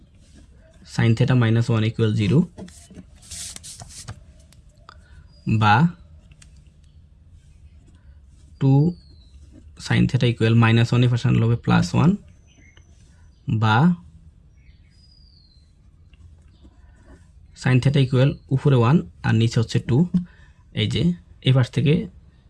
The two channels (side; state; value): both; identical; correlation 1.00